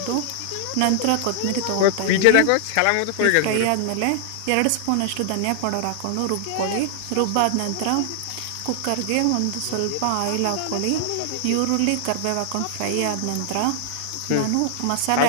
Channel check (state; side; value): different; both; correlation -0.01